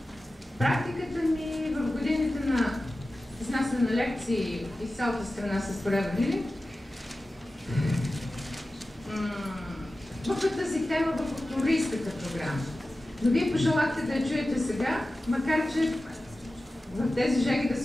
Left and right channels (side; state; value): both; normal; correlation 0.95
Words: Практиката ми в годините на изнасяне на лекции из цялата страна с проявили в тази тема в футуристската програма. Но вие пожелахте да я чуете сега, макар че в тези жеги да